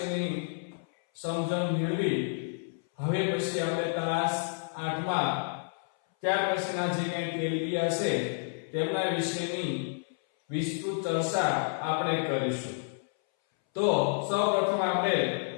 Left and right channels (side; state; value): right; silent; 58 dB below the other